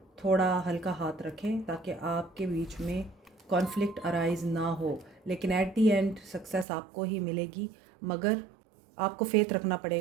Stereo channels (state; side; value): drops out; left; at 6.7 s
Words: थोड़ा हल्का हाथ रखें ताकि आपके बीच में कॉन्फ्लिक्ट अराइज ना हो। लेकिन एट दी एंड सक्सेस आपको ही मिलेगी, मगर आपको फेथ रखना